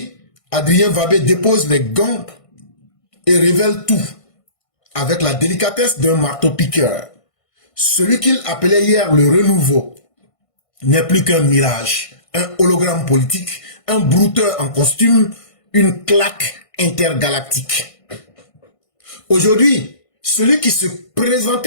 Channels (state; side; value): late; right; 1.5 ms